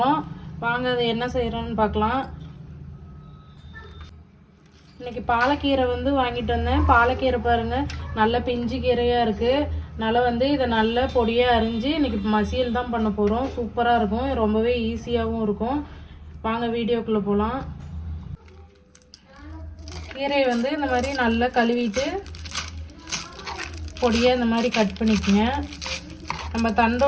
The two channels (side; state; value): both; identical; correlation 1.00